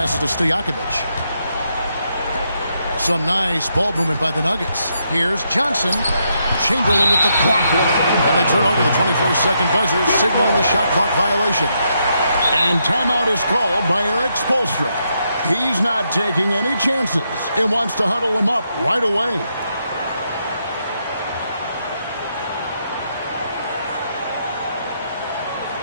to Stojakovic. Some nice ball movement by the Nuggets. Here's Johnson. Chamberlain with the block. And they turn over the 24-second buzzer, signaling the shot clock violation. And timeout is called by Eric Spoelstra. He's not taking any chances and wants to huddle him up right away.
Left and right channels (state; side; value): inverted; both; correlation -0.79